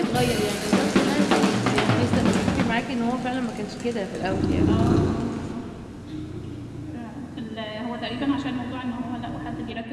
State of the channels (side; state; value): both; identical; correlation 1.00